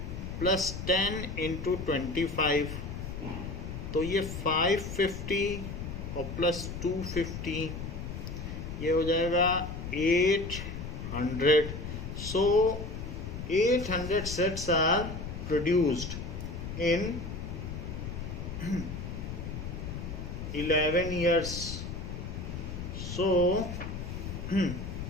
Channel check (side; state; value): left; noise; rumble, 7 dB below the sound